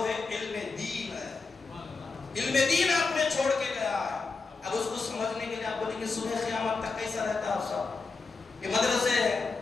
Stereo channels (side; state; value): right; quieter; 4.3 dB